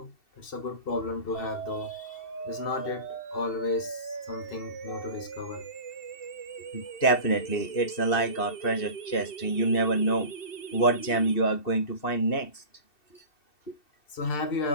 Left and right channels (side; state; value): right; late; 2.7 ms